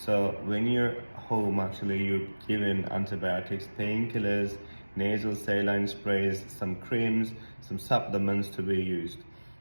when you're home, actually you're given antibiotics, painkillers, nasal saline sprays, some creams, some supplements to be used.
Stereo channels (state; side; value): inverted; both; correlation -1.00